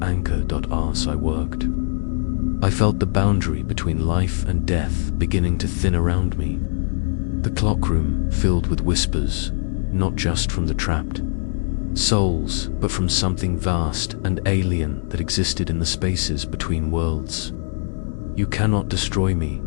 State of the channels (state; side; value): silent; right; digital silence